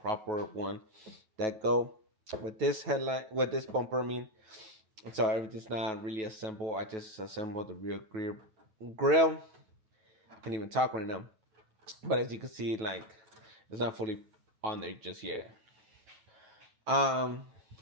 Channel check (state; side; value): late; left; 9.2 ms